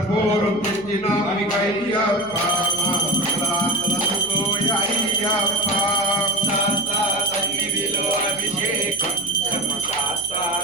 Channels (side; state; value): left; noise; hum, 21 dB below the sound